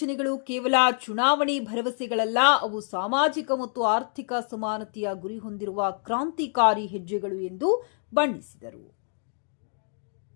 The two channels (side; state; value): right; silent; 60 dB below the other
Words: ಕೇವಲ ಚುನಾವಣೆ ಭರವಸೆಗಳಲ್ಲ, ಅವು ಸಾಮಾಜಿಕ ಮತ್ತು ಆರ್ಥಿಕ ಸಮಾನತೆಯ ಗುರಿ ಹೊಂದಿರುವ ಕ್ರಾಂತಿಕಾರಿ ಹೆಜ್ಜೆಗಳು ಎಂದು ಬಣ್ಣಿಸಿದರು.